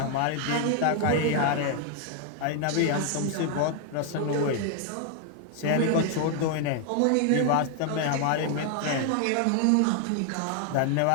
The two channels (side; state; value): both; different; correlation 0.00